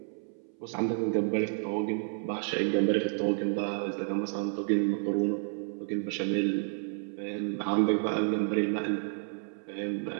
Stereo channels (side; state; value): left; silent; 57 dB below the other